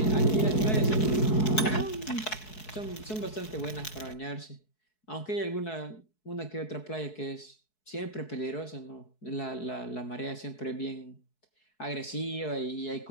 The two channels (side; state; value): right; late; 4.7 ms